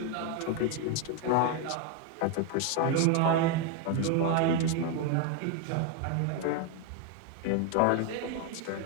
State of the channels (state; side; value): different; both; correlation 0.01